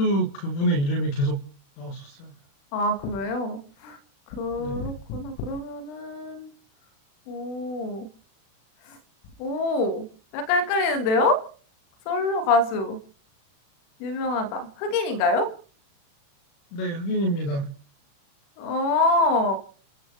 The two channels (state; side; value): late; right; 36 ms